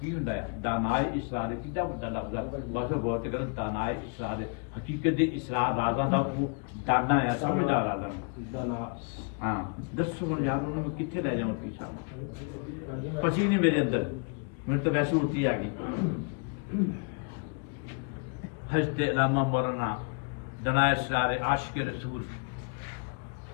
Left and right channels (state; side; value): quieter; right; 39.1 dB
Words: हुंदा है दानाए इसरार कितना बड़ा लफ्ज़ है बस गौर ते करो दानाए इसरार हकीकत दे इसरार राज़ां दा वो दाना है समझदार राज़ा हाँ दसो हुण यार उन्होंने कित्थे ले जावां तुसीं सानूं पची नहीं मेरे अंदर मैंने तो वैसे उल्टी आ गई हजते अलामा मरना दनाए सारे आशिक रसूल